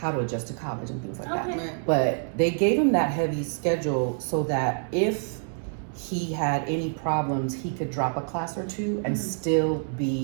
to adjust to college and things like that. Okay. Right. But they gave him that heavy schedule so that if he had any problems, he could drop a class or 2 and still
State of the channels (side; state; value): left; silent; 60 dB below the other